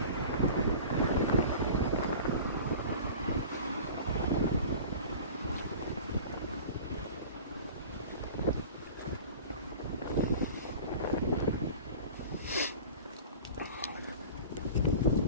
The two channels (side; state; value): both; inverted; correlation -0.39